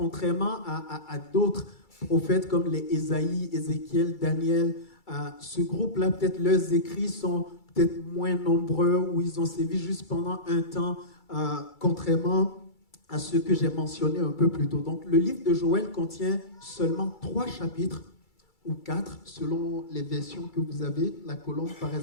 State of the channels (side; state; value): right; late; 2.3 ms